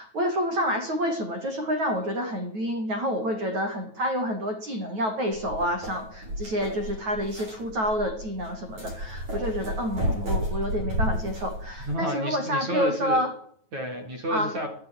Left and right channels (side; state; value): left; late; 9.2 ms